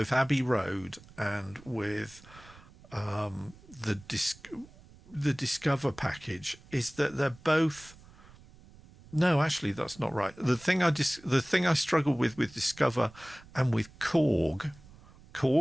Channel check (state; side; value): noise; right; rumble, 23 dB below the sound